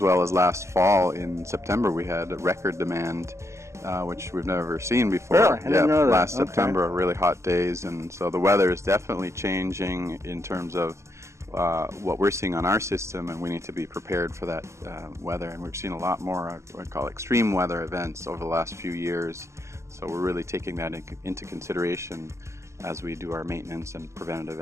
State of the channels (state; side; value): late; left; 0.14 ms